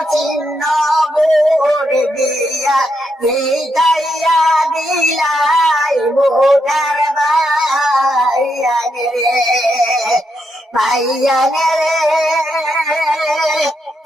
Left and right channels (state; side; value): normal; both; correlation 0.81